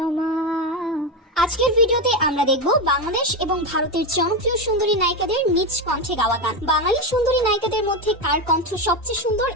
আজকের ভিডিওতে আমরা দেখব বাংলাদেশ এবং ভারতের জনপ্রিয় সুন্দরী নায়িকাদের নিজ কণ্ঠে গাওয়া গান। বাঙালি সুন্দরী নায়িকাদের মধ্যে কার কণ্ঠ সবচেয়ে সুন্দর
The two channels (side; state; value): both; normal; correlation 0.13